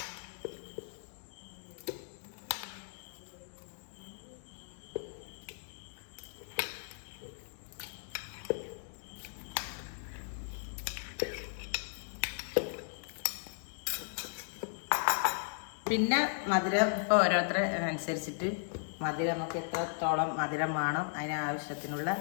പിന്നെ മധുരം ഇപ്പോൾ ഓരോരുത്തരെ അനുസരിച്ചിട്ട് മധുരം നമുക്ക് എത്രത്തോളം മധുരം വേണം അതിനാവശ്യത്തിനുള്ള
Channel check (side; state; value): right; silent; digital silence